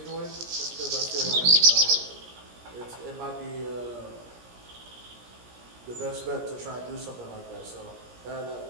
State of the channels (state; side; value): late; left; 17 ms